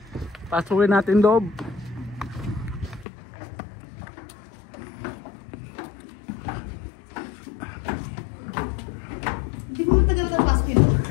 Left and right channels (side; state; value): right; drops out; at 3.1 s